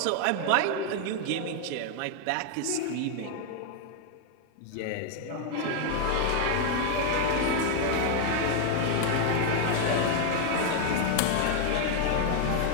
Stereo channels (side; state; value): both; different; correlation 0.00